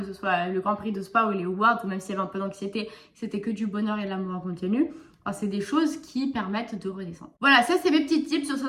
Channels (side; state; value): both; identical; correlation 1.00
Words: ce soit le Grand Prix de Spa ou les awards, ou même s'il y avait un peu d'anxiété, c'était que du bonheur et de l'amour en continu. C'est des choses qui permettent de redescendre. Voilà, ça c'est mes petits tips sur